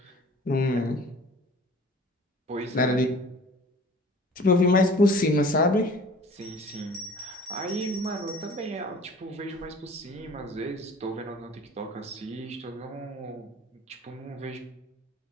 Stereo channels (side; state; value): both; normal; correlation 0.46